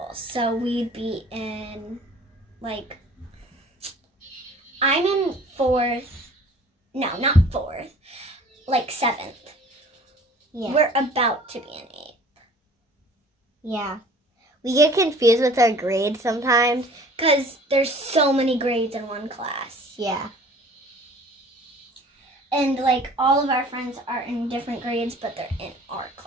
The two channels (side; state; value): both; normal; correlation 0.49